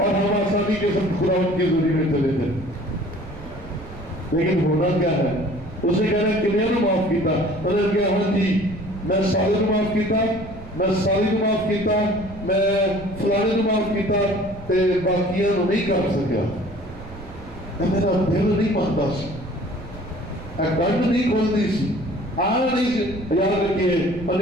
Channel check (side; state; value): right; noise; rumble, 16 dB below the sound